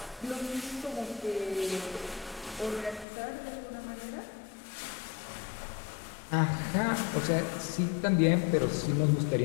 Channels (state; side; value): drops out; right; at 3.1 s